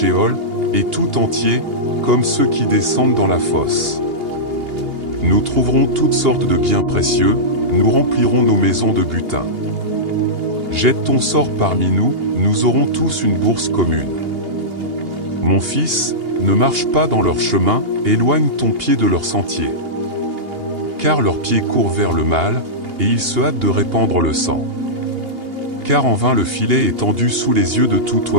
et tout entier, comme ceux qui descendent dans la fosse. Nous trouverons toutes sortes de biens précieux, nous remplirons nos maisons de butin. Jette ton sort parmi nous, nous aurons tous une bourse commune. Mon fils, ne marche pas dans leur chemin, éloigne ton pied de leur sentier. Car leurs pieds courent vers le mal, et ils se hâtent de répandre le sang. Car en vain le filet est tendu sous les yeux de tout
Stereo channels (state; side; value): late; left; 2.8 ms